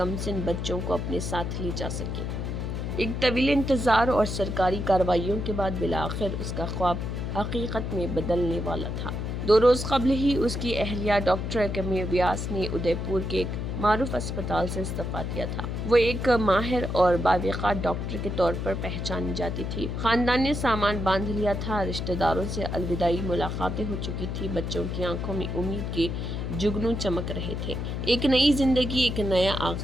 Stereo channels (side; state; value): left; noise; hum, 3 dB below the sound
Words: बच्चों को अपने साथ ले जा सके। एक तवील इंतज़ार और सरकारी कार्रवाइयों के बाद बिलाखिर उसका ख्वाब हकीकत में बदलने वाला था। 2 रोज़ कबल ही उसकी अहलिया डॉक्टर कमी व्यास ने उदयपुर के एक मारूफ अस्पताल से इस्तीफा दिया था। वो एक माहिर और बावक़ार डॉक्टर के तौर पर पहचानी जाती थी। खानदान ने सामान बांध लिया था, रिश्तेदारों से अलविदाई मुलाकातें हो चुकी थी, बच्चों की आंखों में उम्मीद के जुगनू चमक रहे थे। एक नई जिंदगी, एक नया